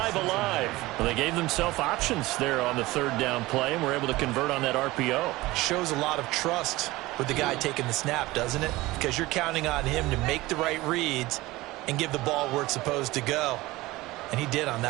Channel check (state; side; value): quieter; left; 19.4 dB